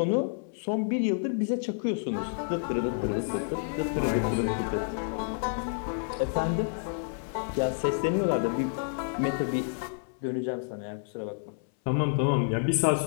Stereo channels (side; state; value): right; silent; 58 dB below the other